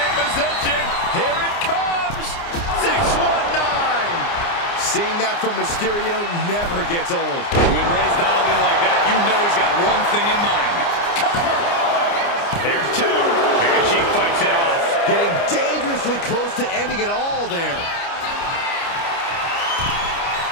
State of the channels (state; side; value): late; right; 29 ms